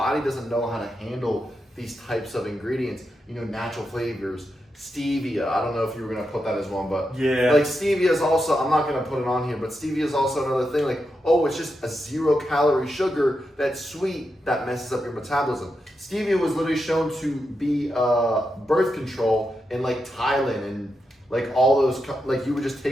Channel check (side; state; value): both; normal; correlation 0.86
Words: doesn't know how to handle these types of ingredients. Natural flavors. Stevia, I don't know if you were going to put that as one, but yeah. Stevia is also, I'm not going to put it on here, but stevia is also another thing. It's just a 0-calorie sugar that's sweet that messes up your metabolism. Stevia was literally shown to be birth control in Thailand and all those, you would just